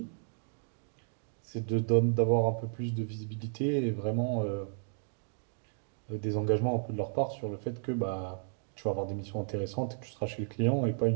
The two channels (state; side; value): silent; left; 56 dB below the other